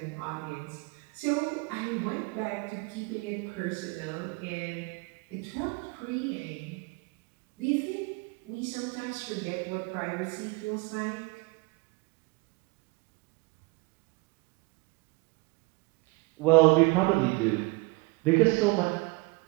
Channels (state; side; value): quieter; left; 27.0 dB